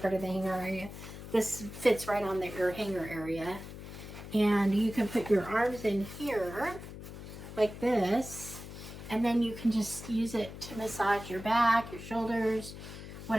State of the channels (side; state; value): left; noise; hum, 12 dB below the sound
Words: heard of the hanger area. This fits right on your hanger area. And you can put your arms in here like this. And then you can just use it to massage your back, your shoulders,